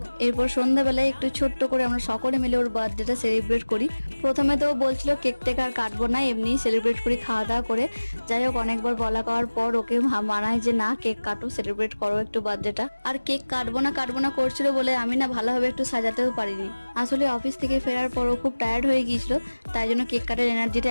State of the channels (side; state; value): both; inverted; correlation -1.00